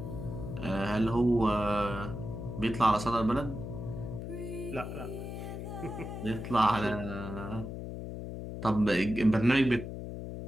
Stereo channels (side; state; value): left; noise; hum, 7 dB below the sound